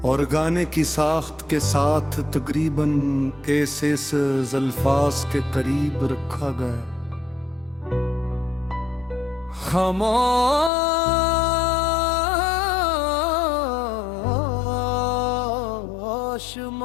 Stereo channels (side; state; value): right; drops out; at 10.7 s